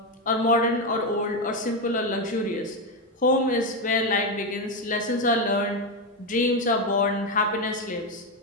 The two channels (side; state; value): both; normal; correlation 0.09